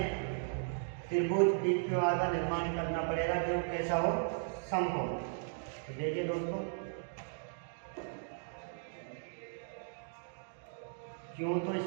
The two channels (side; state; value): left; silent; digital silence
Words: त्रिभुज PQR का निर्माण करना पड़ेगा जो कैसा हो? समकोण। तो देखिए दोस्तों, क्यों तो